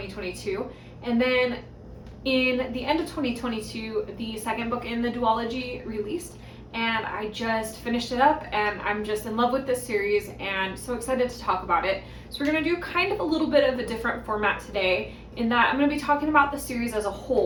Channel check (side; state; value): both; identical; correlation 1.00